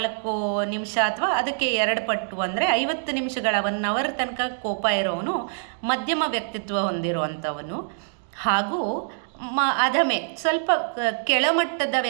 ನಿಮಿಷ ಅಥವಾ ಅದಕ್ಕೆ 2 ಪಟ್ಟು ಅಂದರೆ 50 ನಿಮಿಷಗಳ 1 ಅವರ್ ತನಕ ಕೋಪ ಇರೋವನು ಮಧ್ಯಮ ವ್ಯಕ್ತಿತ್ವ ಹೊಂದಿರುವಂಥವನು. ಹಾಗೂ ಅಧಮೆ ಸ್ವಲ್ಪ ಕೆಳಮಟ್ಟದ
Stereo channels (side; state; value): left; silent; digital silence